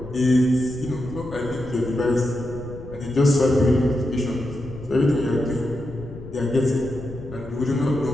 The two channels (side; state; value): left; noise; rumble, 14 dB below the sound